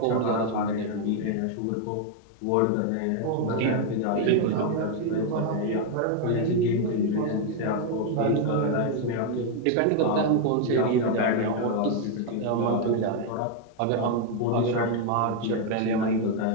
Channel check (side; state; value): both; different; correlation 0.01